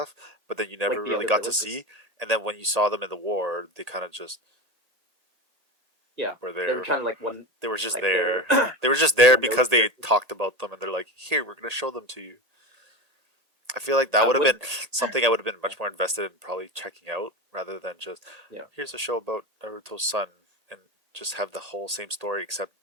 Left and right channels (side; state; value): left; late; 1.8 ms